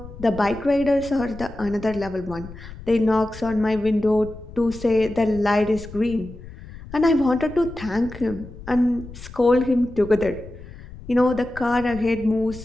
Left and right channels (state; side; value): noise; left; rumble, 15 dB below the sound